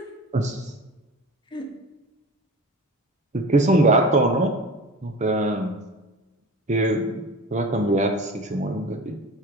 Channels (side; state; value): both; normal; correlation 0.34